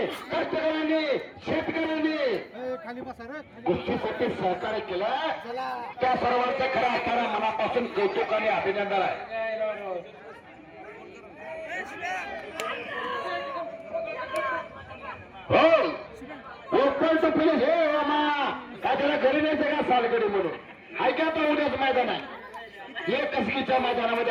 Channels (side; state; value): both; identical; correlation 1.00